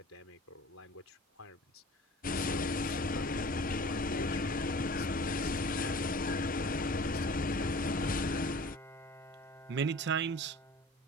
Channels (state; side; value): normal; both; correlation 0.43